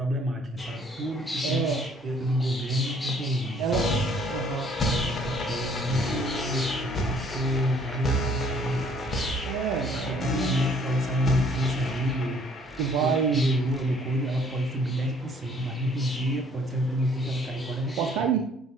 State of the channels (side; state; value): both; normal; correlation 0.60